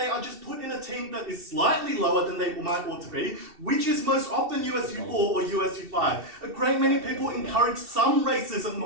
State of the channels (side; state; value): left; late; 2.7 ms